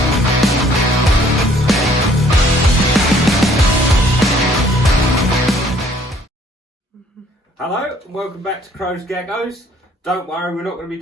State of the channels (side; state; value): both; normal; correlation 0.60